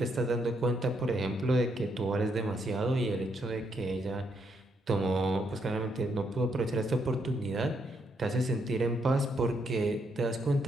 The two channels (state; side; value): normal; both; correlation 0.76